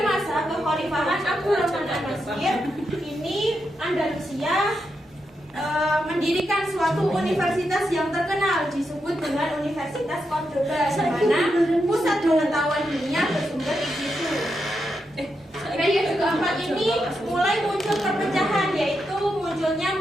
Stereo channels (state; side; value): normal; both; correlation 0.85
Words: masa kekhalifahan Abdurrahman An-Nasir ini Andalusia mendirikan suatu universitas yang terkenal disebut dengan Universitas Cordoba, di mana pusat pengetahuan dunia bersumber di situ. Periode keempat ini mulai muncul perpecahan, yaitu munculnya